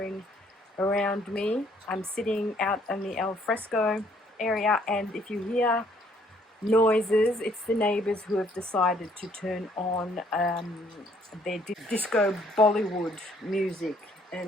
around me. I'm sitting out in the al fresco area, and if you hear noises, it's the neighbours who have decided to turn on their disco Bollywood music,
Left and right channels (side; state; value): both; normal; correlation 0.64